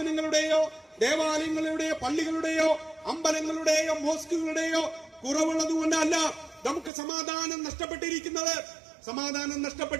ദേവാലയങ്ങളുടെയോ പള്ളികളുടെയോ അമ്പലങ്ങളുടെയോ മോസ്കുകളുടെയോ കുറവുള്ളത് കൊണ്ടല്ല നമുക്ക് സമാധാനം നഷ്ടപ്പെട്ടിരിക്കുന്നത്. സമാധാനം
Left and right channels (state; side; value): drops out; left; at 6.9 s